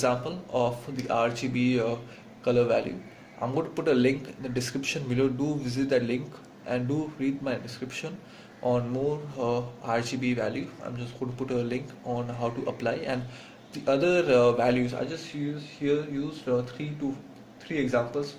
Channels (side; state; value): both; identical; correlation 1.00